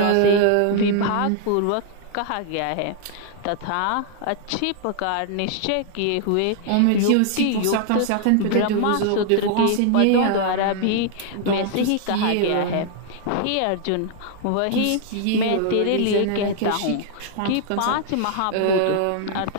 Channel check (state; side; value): different; both; correlation 0.00